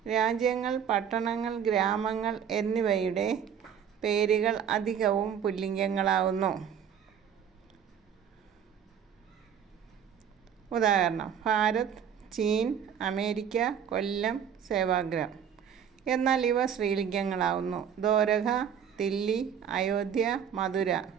രാജ്യങ്ങൾ, പട്ടണങ്ങൾ, ഗ്രാമങ്ങൾ എന്നിവയുടെ പേരുകൾ അധികവും പുല്ലിംഗങ്ങളാകുന്നു. ഉദാഹരണം: ഭാരത്, ചീൻ, അമേരിക്ക, കൊല്ലം, സേവാഗ്രാം. എന്നാൽ ഇവ സ്ത്രീലിംഗങ്ങളാകുന്നു. ദ്വാരക, ദില്ലി, അയോധ്യ, മധുര.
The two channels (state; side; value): quieter; left; 8.2 dB